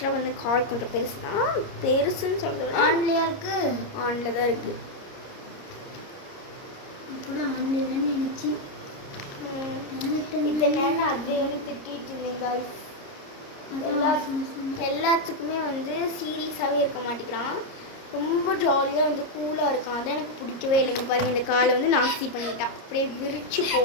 வந்து கால் கொஞ்சம் பெருசு தான். பெருசுன்னு சொல்கிறது ஆன்லையா இருக்கு. ஆன்ல தான் இருக்குது. கூட ஆன்லைன்னு நினச்சி இந்த நேரம் அது திட்டிட்டு இருந்தீங்க. எல்லாத்துக்குமே வந்து சீரியஸாகவே இருக்க மாட்டேங்கிறான். ரொம்ப ஜாலியாக வந்து கூலாக இருக்கான். அதான் எனக்கு பிடிக்கவே இல்லைங்க. பாருங்க இந்த காலை வந்து நாஸ்தி பண்ணிட்டான். அப்படியே விரிச்சு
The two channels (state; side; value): late; right; 30 ms